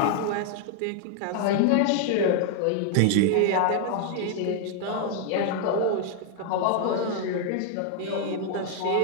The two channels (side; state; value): both; different; correlation 0.00